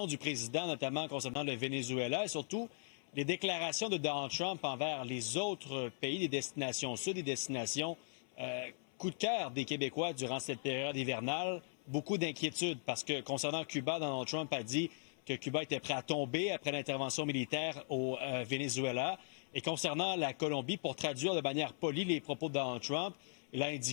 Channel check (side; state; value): right; silent; 52 dB below the other